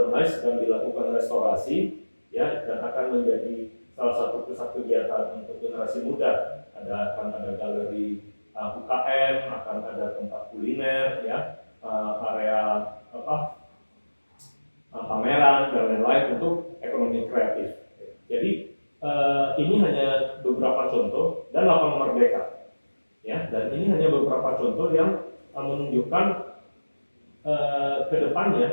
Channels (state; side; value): inverted; both; correlation -1.00